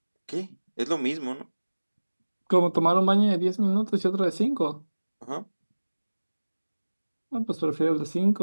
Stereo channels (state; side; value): inverted; both; correlation -1.00